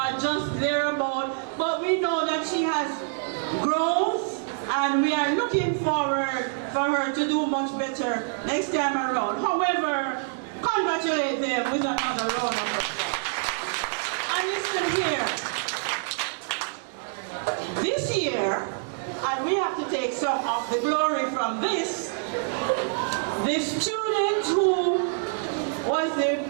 just thereabout. But we know that she has growth, and we are looking forward for her to do much better next time around. However, congratulate them with another round of applause. And listen here, this year, and we have to take some of the glory from this, the student who was the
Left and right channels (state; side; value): silent; left; digital silence